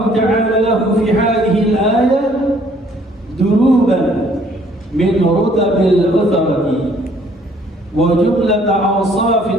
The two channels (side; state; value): both; normal; correlation 0.61